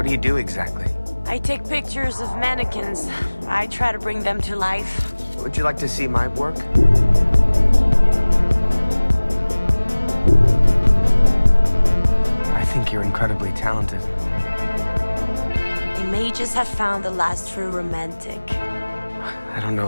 do you do exactly? I take pictures of mannequins. I try to bring them to life. Would you like to see my work? I think you're incredibly talented. They may just have found the last true romantic. I don't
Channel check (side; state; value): both; inverted; correlation -1.00